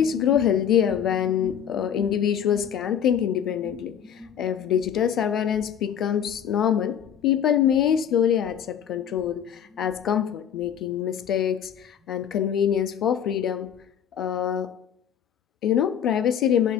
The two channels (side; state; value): right; quieter; 8.8 dB